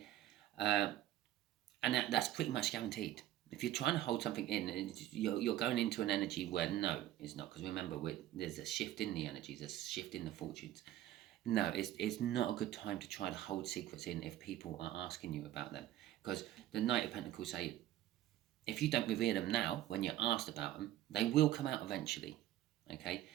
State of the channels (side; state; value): left; quieter; 13.3 dB